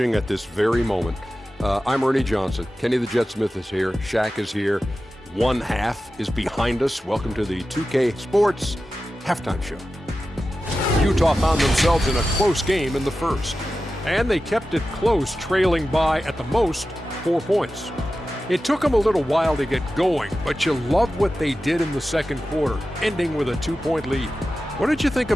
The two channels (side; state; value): both; normal; correlation 0.93